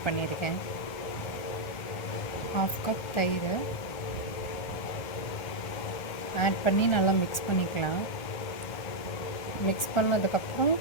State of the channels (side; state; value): right; late; 1.4 ms